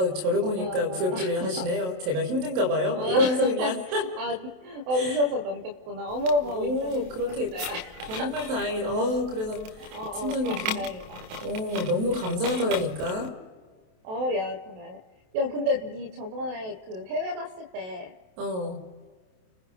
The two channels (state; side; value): late; left; 27 ms